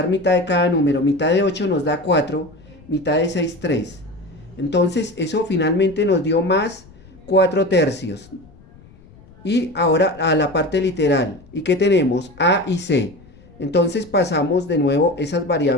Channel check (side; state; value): left; noise; rumble, 24 dB below the sound